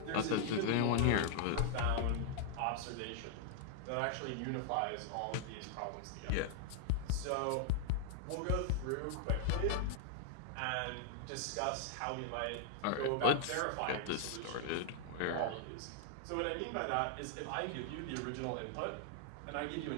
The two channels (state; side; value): different; both; correlation 0.00